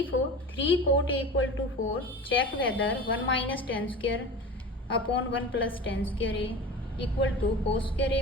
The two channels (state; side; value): normal; both; correlation 0.33